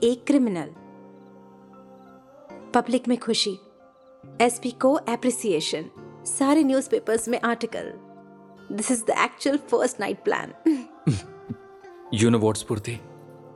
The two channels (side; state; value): both; identical; correlation 1.00